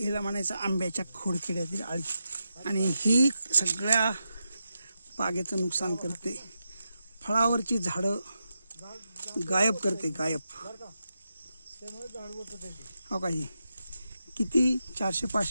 हिला म्हणायचं आंब्याच्या खोडकिड्यातील आळी. आणि ही सगळ्या बागेचं नुकसान करते. फळावरची झाडं गायब करते, गायब. हो का, ही किती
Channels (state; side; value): inverted; both; correlation -0.87